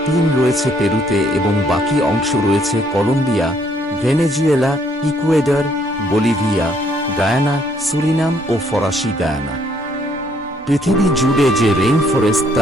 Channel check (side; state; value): both; normal; correlation 0.67